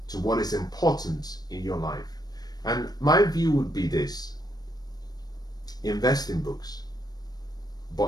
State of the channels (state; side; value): late; right; 0.19 ms